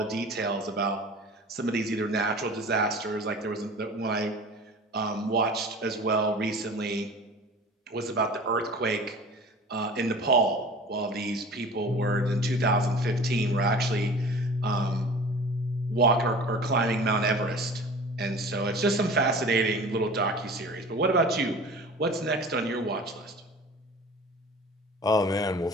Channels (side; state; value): both; normal; correlation 0.41